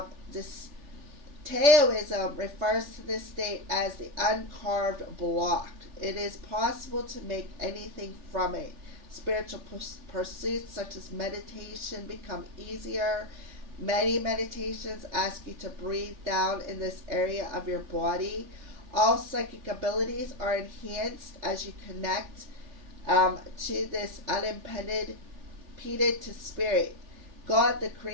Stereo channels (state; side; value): late; left; 3.3 ms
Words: This Taoism refers to this state as the uncarved block. It is possible to make anything from it. Spiritual pursuits such as meditation become easier. Many meditations ask you to breathe down in this area of your body. All psychic abilities are enhanced as you connect to this unimpeded to spirit. God, the